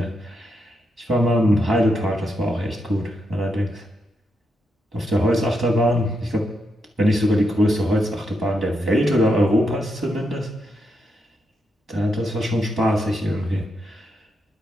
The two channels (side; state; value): both; normal; correlation 0.83